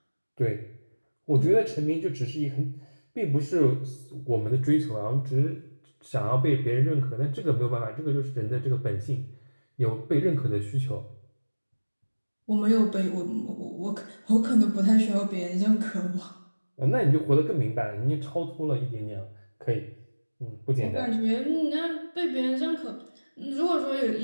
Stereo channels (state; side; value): inverted; both; correlation -1.00